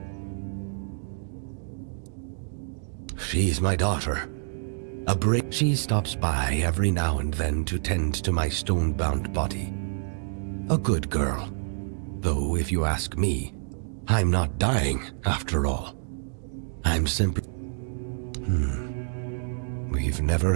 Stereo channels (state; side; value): silent; left; digital silence